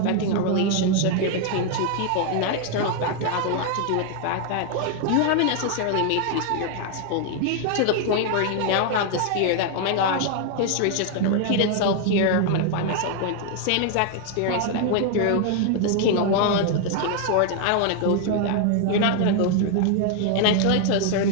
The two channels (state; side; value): different; both; correlation 0.00